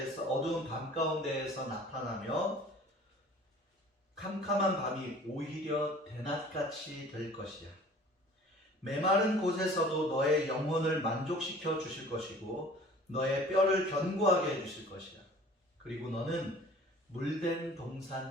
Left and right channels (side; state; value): both; normal; correlation 0.47